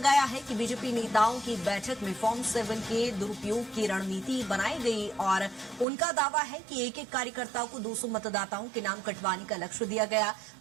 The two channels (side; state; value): left; drops out; at 5.9 s